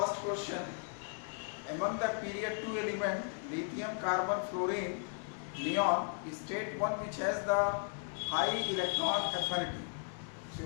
question. Among the period 2 element lithium, carbon, fluorine, neon, state one which has the high electron affinity. So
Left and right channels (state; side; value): silent; right; 54 dB below the other